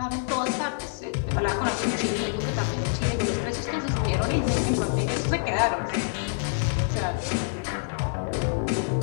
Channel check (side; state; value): right; silent; 61 dB below the other